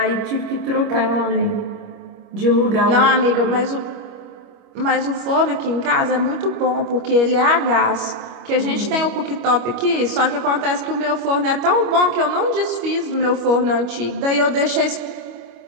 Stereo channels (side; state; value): left; late; 25 ms